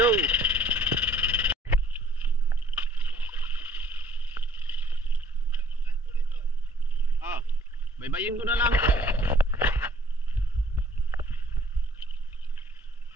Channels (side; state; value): both; normal; correlation 0.59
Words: Baybayin ko na lang.